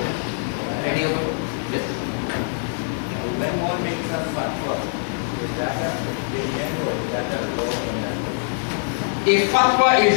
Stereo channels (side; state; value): right; silent; 63 dB below the other